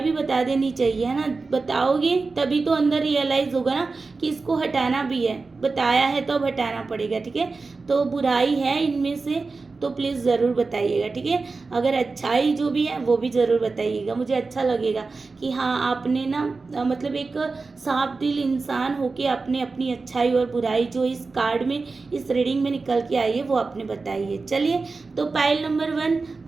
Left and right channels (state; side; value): quieter; left; 4.0 dB